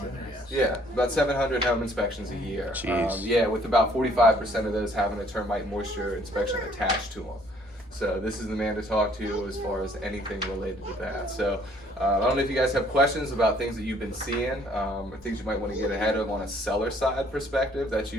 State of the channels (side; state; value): both; normal; correlation 0.61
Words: Yeah, about 700 home inspections a year. Yeah, with about 45% of those having a termite moisture inspection attached to them. So this is the man to talk to as far as anything related to that. So I don't know if you guys have questions about things that you've been seeing, or things you might want to get ahead of on a seller side perspective. That's